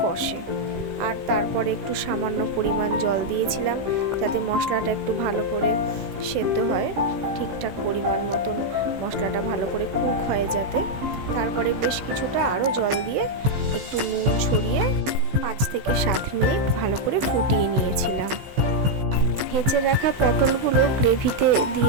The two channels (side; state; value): left; late; 15 ms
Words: কষে। আর তারপরে একটু সামান্য পরিমাণ জল দিয়েছিলাম, যাতে মশলাটা একটু ভালো করে সেদ্ধ হয়, ঠিকঠাক পরিমাণ মতন মশলাটা ভালো করে কুক হয় যাতে। তারপরে বেশ কিছুটা আরও জল দিয়ে একটু নুন ছড়িয়ে 5 থেকে 7 মিনিট ভালো করে ফুটিয়ে নিয়েছিলাম। ভেজে রাখা পটলগুলো গ্রেভিতে